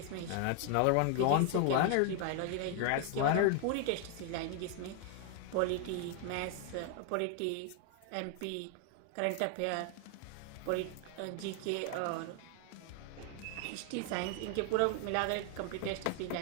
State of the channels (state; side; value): different; both; correlation 0.00